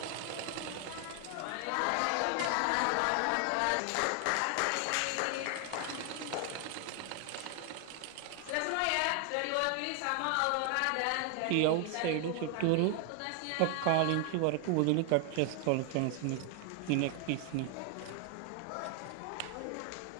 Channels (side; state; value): both; different; correlation 0.00